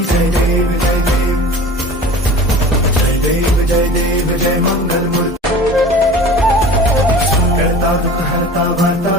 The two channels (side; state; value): both; normal; correlation 0.39